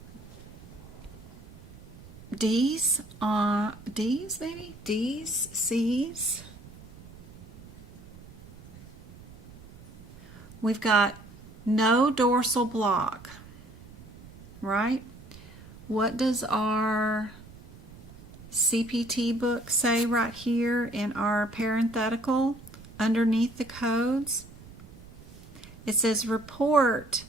D's on D's maybe? D's, C's. We've got no dorsal block. Right? What does our CPT book say right here in our parenthetical underneath the codes? It says report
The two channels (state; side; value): noise; right; rumble, 19 dB below the sound